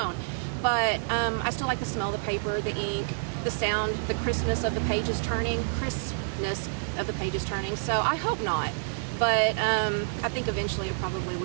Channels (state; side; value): silent; left; digital silence